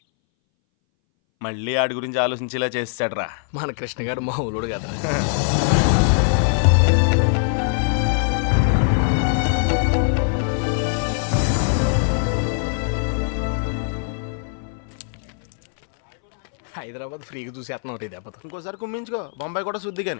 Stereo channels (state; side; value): silent; right; 62 dB below the other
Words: మళ్ళీ ఆడి గురించి ఆలోచించేలా చేస్తాడ్రా మన కృష్ణ గారు మామూలుడు కదా. హైదరాబాద్ ఫ్రీగా చూసేస్తున్నాం ఒకటి దెబ్బతో. ఇంకోసారి కుమ్మించుకో, బొంబాయి కూడా శుద్ధి